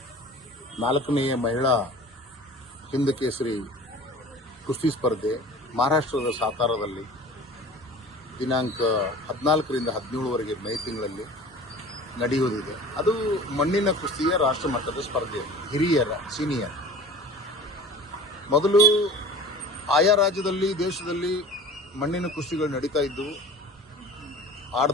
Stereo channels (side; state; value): both; normal; correlation 0.40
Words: 4ನೇಯ ಮಹಿಳಾ ಹಿಂದ್ ಕೇಸರಿ ಕುಸ್ತಿ ಸ್ಪರ್ಧೆ ಮಹಾರಾಷ್ಟ್ರದ ಸಾತಾರದಲ್ಲಿ ದಿನಾಂಕ 14ರಿಂದ 17ವರೆಗೆ ಮೇ ತಿಂಗಳಲ್ಲಿ ನಡೆಯುವುದಿದೆ. ಅದು ಮಣ್ಣಿನ ಕುಸ್ತಿಯ ರಾಷ್ಟ್ರ ಮಟ್ಟದ ಸ್ಪರ್ಧೆ, ಹಿರಿಯರ ಸೀನಿಯರ್. ಮೊದಲು ಆಯಾ ರಾಜ್ಯದಲ್ಲಿ ದೇಶದಲ್ಲಿ ಮಣ್ಣಿನ ಕುಸ್ತಿಗಳು ನಡೀತಾ ಇದ್ದವು,